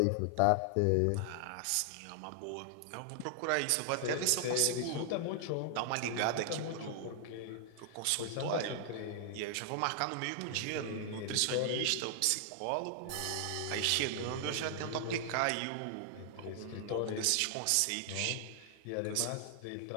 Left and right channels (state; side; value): different; both; correlation 0.00